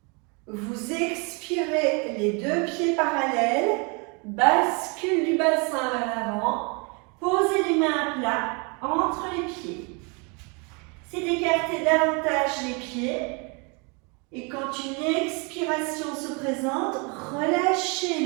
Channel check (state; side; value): quieter; left; 32.4 dB